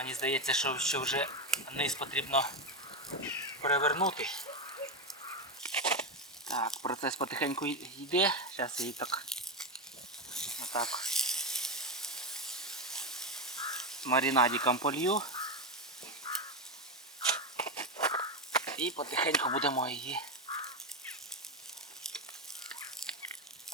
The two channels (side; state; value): both; normal; correlation 0.11